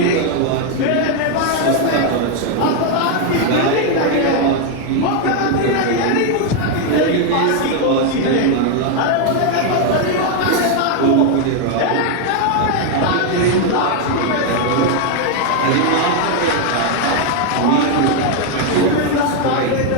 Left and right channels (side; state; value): both; different; correlation 0.01